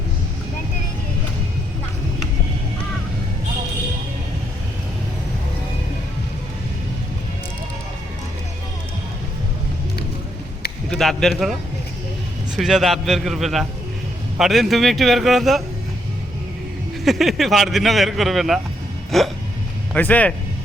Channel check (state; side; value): normal; both; correlation 0.75